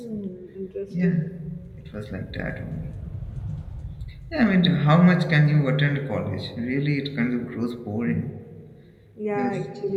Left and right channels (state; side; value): identical; both; correlation 1.00